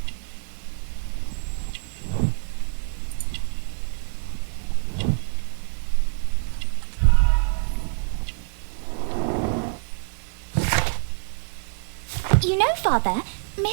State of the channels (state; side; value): silent; left; digital silence